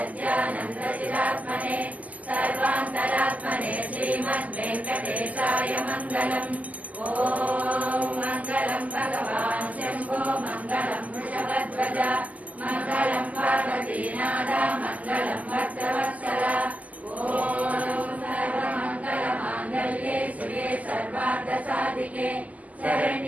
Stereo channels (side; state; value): left; late; 0.075 ms